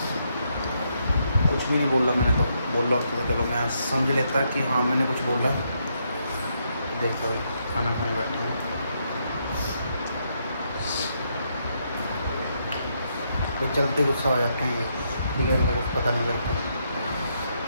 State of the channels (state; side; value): inverted; both; correlation -0.77